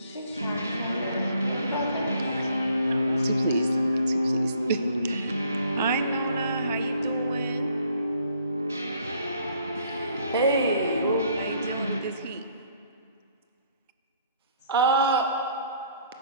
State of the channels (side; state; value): both; inverted; correlation -0.63